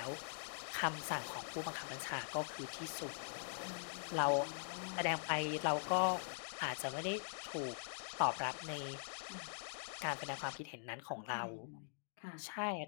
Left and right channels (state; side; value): silent; right; digital silence